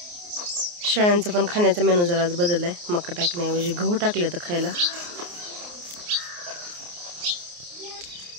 शेळ्यांचं पण खाण्याचा मेनू जरा आज बदललाय. मका टाकण्याऐवजी गहू टाकले तर खायला.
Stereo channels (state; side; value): late; left; 29 ms